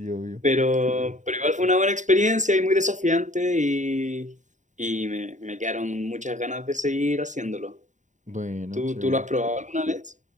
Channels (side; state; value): left; late; 0.36 ms